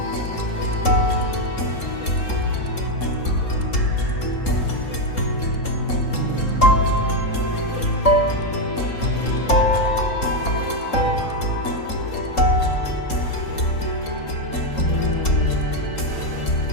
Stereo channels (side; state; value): right; late; 3.7 ms